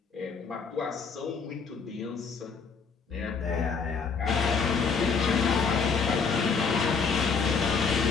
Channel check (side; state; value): right; quieter; 5.4 dB